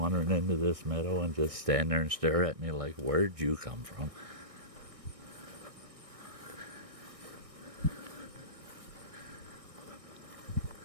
into this meadow and just stand there and stare at me like, where'd you come from?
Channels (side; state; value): left; late; 1.6 ms